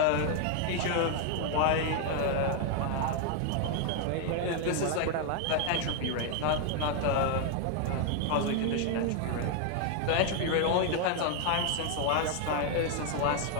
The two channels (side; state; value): both; different; correlation 0.00